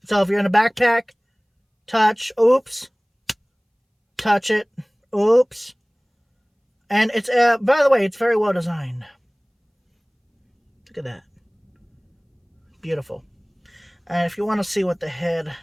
So if you're in a backpack, touch, oops, touch it. Oops. And it's, by the way, it's very well designed. Look at that. Beautiful. And if you want to see what the head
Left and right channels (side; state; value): both; identical; correlation 1.00